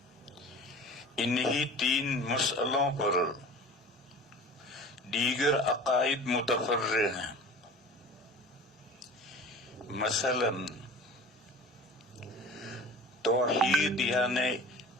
انہی تین مسئلوں پر دیگر عقائد متفرع ہیں۔ مثلا توحید یعنی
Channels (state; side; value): normal; both; correlation 0.40